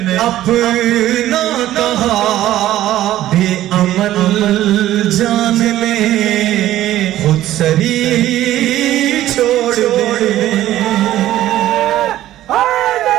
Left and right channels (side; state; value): left; quieter; 13.8 dB